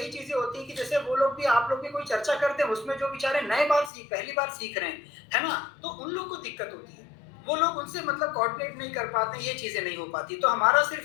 चीजें होती है कि जैसे वो लोग भी, आप लोग भी कोई चर्चा करते हैं, उसमें जो बेचारे नए बार पहली बार सीख रहे हैं, है ना, तो उन लोग को दिक्कत होती है, वो लोग उनसे मतलब कोऑर्डिनेट नहीं कर पाते, ये चीजें नहीं हो पाती। तो हमारा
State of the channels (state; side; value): drops out; right; at 3.9 s